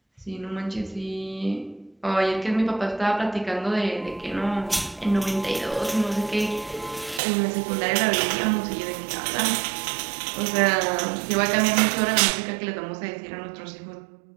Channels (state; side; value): drops out; left; at 7.2 s